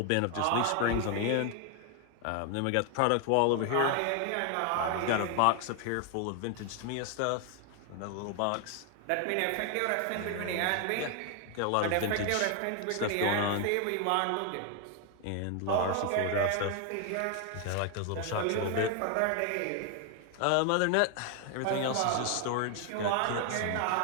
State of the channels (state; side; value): different; both; correlation 0.00